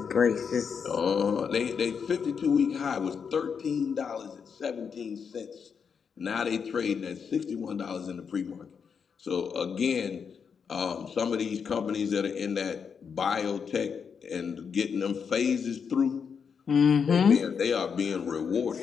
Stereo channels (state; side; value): quieter; right; 6.5 dB